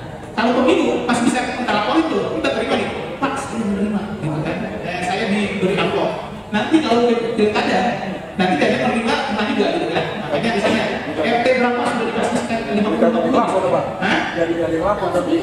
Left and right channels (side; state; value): both; identical; correlation 1.00